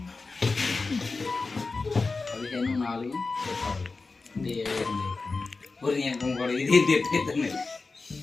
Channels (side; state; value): right; quieter; 3.9 dB